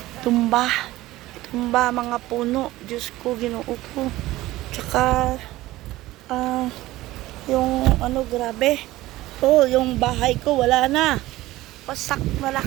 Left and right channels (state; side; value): quieter; left; 17.2 dB